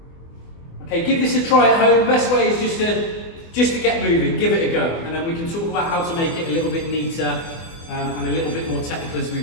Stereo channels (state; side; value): late; right; 24 ms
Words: Okay, give this a try at home. Best way is just to get moving, give it a go, and then we can talk about how to make it a little bit neater and a little bit more technical as we